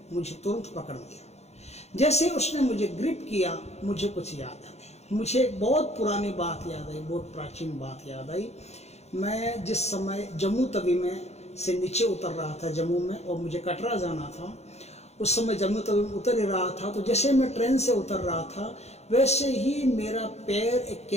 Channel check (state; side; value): late; right; 0.31 ms